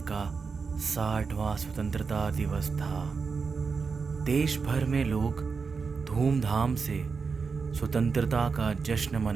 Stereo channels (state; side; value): quieter; left; 5.1 dB